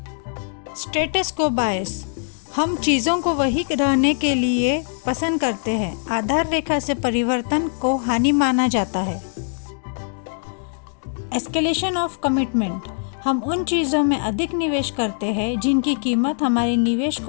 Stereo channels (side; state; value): right; silent; 64 dB below the other